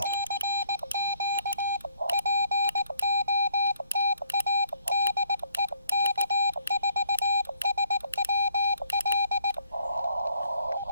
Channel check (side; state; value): both; inverted; correlation -0.67